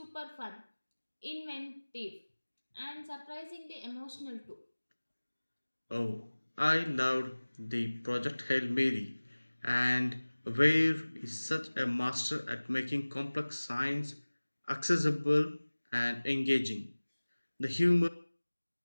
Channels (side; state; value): both; inverted; correlation -1.00